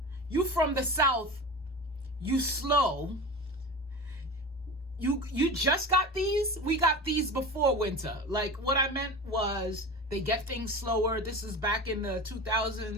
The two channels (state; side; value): normal; both; correlation 0.31